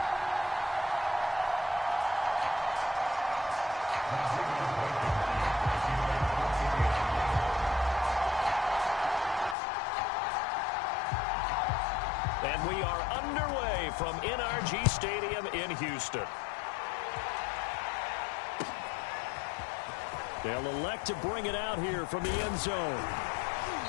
And we are underway from NRG Stadium in Houston. They'll elect to bring it out here from the end zone.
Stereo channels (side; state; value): right; drops out; at 9.6 s